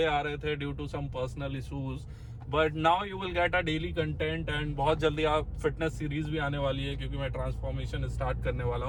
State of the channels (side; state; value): both; identical; correlation 1.00